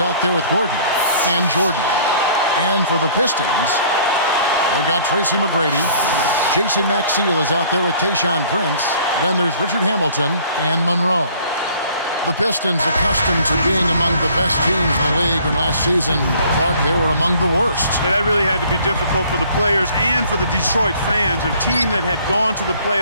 out there with Gordon and Jordan. And for the Pistons, they've got Tracy McGrady. Jason Maxiell is out there with Tayshaun Prince. Then there's Richard Hamilton and Monroe. The Pistons, accustomed to being among the best teams in the league, and last season, Clark, they were among the worst. Yeah, that really had to be difficult for the players and for the Detroit fans, a team that had gone to the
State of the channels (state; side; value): inverted; both; correlation -0.55